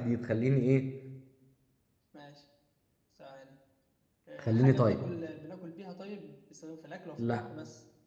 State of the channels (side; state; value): both; identical; correlation 1.00